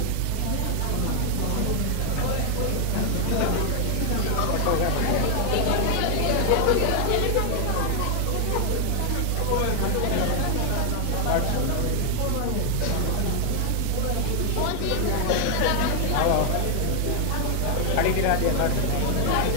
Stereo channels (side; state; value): both; different; correlation 0.00